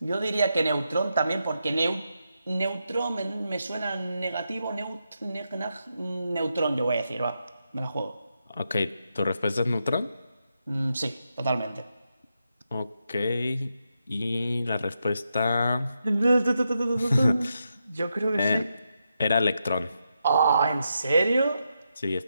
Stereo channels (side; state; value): both; inverted; correlation -0.85